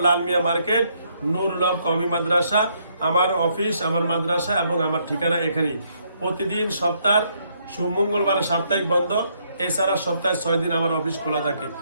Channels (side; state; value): both; inverted; correlation -0.72